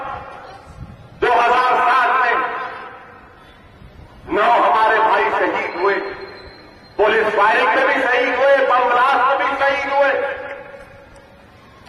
2007 میں 9 ہمارے بھائی شہید ہوئے، پولیس فائرنگ میں بھی شہید ہوئے، بم بلاسٹ میں بھی شہید ہوئے۔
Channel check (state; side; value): identical; both; correlation 1.00